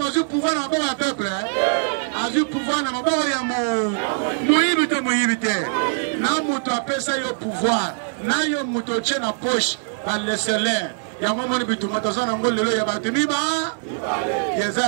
pouvoir na maboko ya peuple azu pouvoir na maboko ya moyibi te na moto apesa yo pouvoir na yo moto tche na poche baleselaire yango moni bituma toza nango lelo ya bato miba yeza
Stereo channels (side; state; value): left; silent; digital silence